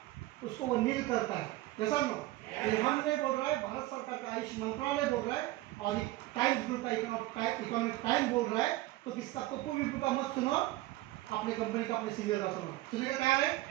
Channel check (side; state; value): left; quieter; 17.6 dB